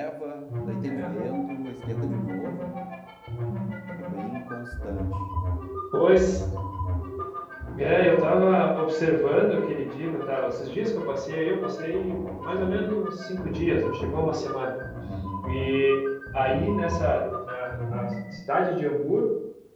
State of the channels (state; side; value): identical; both; correlation 1.00